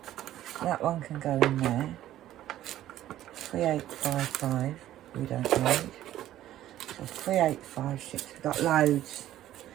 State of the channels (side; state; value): left; quieter; 13.2 dB